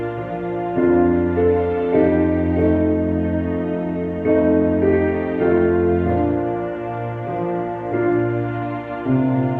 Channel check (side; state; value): both; identical; correlation 1.00